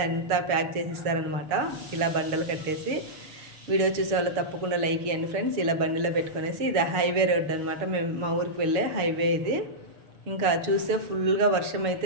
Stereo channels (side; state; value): left; late; 6.9 ms